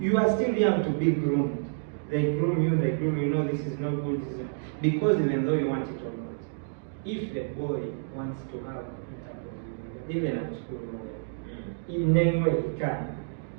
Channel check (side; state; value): left; silent; digital silence